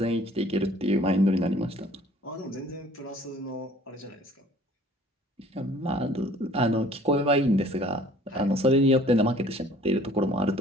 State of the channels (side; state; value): both; normal; correlation 0.53